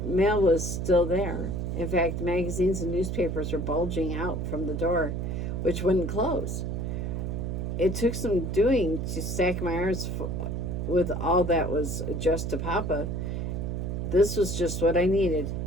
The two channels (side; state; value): right; noise; hum, 2 dB below the sound